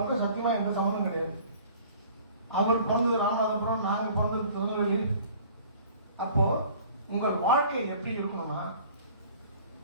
சத்தியமா எந்த சம்மந்தம் கிடையாது. அவர் பிறந்தது ராமநாதபுரம், நாங்க பிறந்தது திருநெல்வேலி. அப்போ உங்கள் வாழ்க்கை எப்படி இருக்கணும்னா,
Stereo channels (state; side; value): inverted; both; correlation -0.50